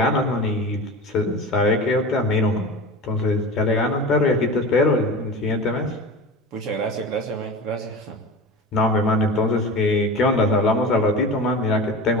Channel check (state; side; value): normal; both; correlation 0.31